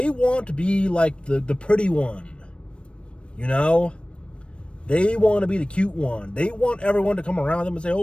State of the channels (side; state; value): right; late; 0.058 ms